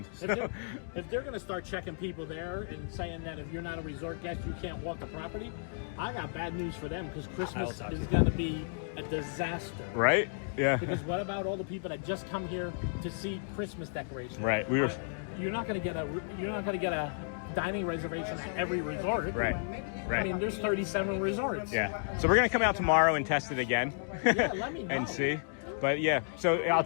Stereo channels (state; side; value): silent; right; digital silence